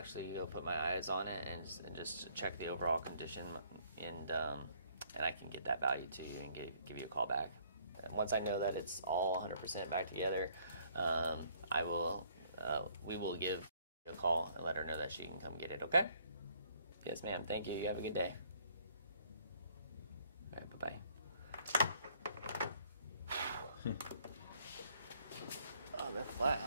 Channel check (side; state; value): both; inverted; correlation -0.62